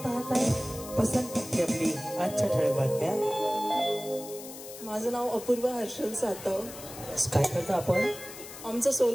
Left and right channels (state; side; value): noise; left; hiss, 13 dB below the sound